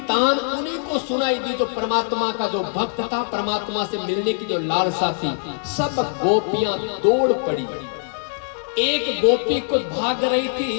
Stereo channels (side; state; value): right; silent; digital silence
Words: तान उन्हीं को सुनाई दी जो परमात्मा का जो भक्त था, परमात्मा से मिलने की जो लालसा थी। सब गोपियां दौड़ पड़ी। एक गोपी को भाग रही